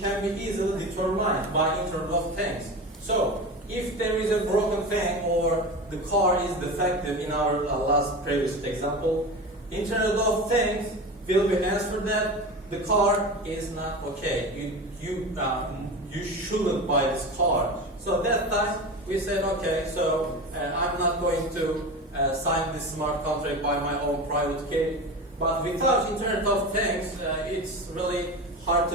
can be easily determined by Internet of Things. So if there is a broken thing or the car is defective in our previous example, Internet of Things will be answered that the car is not okay. You shouldn't buy this car. So that time we said, okay, so I'm not going to sign this smart contract by my own private key. But without Internet of Things, it's really hard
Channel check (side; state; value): both; normal; correlation 0.28